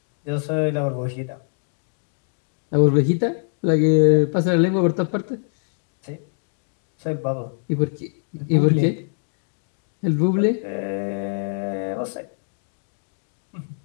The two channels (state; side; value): silent; right; digital silence